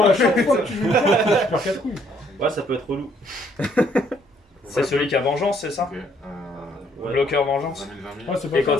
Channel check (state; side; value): normal; both; correlation 0.66